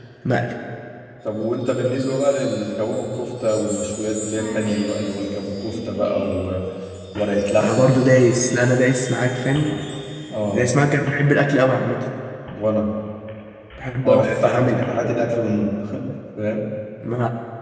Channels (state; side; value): identical; both; correlation 1.00